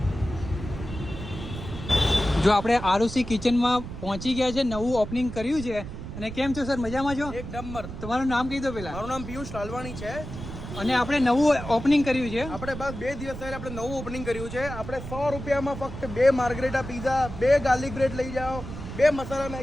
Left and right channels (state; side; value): noise; right; rumble, 9 dB below the sound